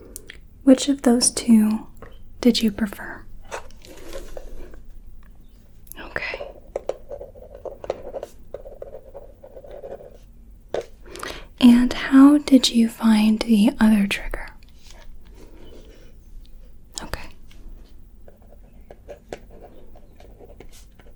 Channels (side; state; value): both; identical; correlation 1.00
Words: Which of those two did you prefer? And how did you find the other trigger? Okay.